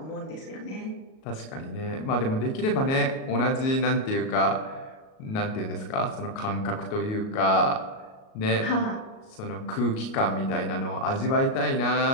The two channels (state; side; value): late; right; 37 ms